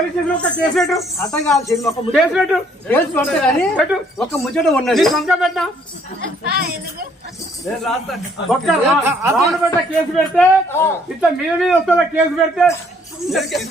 స్టేషన్ ఒక కేసు పెట్టు అటగా కేసు పెట్టు కేసు పెడతా కానీ పెట్టు ఒక ముచ్చట ఉన్నది సంఖ్య పెట్టా రావణపేట కేసు పెడితే ఇట్లా మీద మీద వస్తా కేసు పెడితే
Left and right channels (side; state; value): both; normal; correlation 0.64